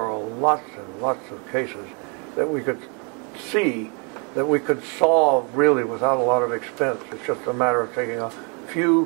lots and lots of cases that we could see that we could solve really without a lot of expense. It's just a matter of taking a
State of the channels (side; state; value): left; quieter; 34.5 dB